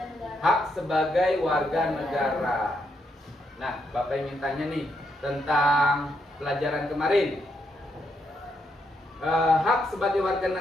Hak sebagai warga negara. Nah, Bapak ingin tanya nih tentang pelajaran kemarin. Hak sebagai warga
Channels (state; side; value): normal; both; correlation 0.79